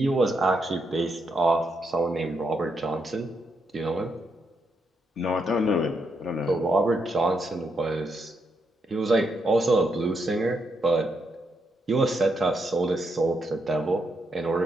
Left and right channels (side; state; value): both; normal; correlation 0.80